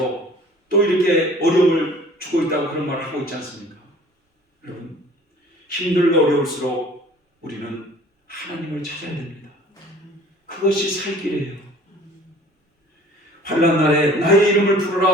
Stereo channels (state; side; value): normal; both; correlation 0.50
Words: 또 이렇게 어려움을 주고 있다고 그런 말을 하고 있지 않습니까? 여러분, 힘들고 어려울수록 우리는 하나님을 찾아야 됩니다. 그것이 살 길이에요. 환난 날에 나의 이름을